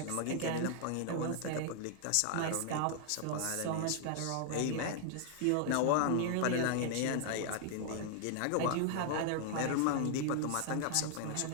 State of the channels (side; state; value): both; different; correlation 0.00